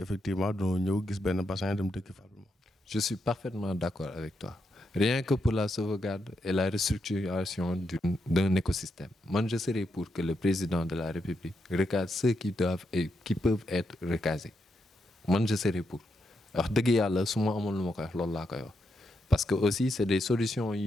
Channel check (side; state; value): both; normal; correlation 0.82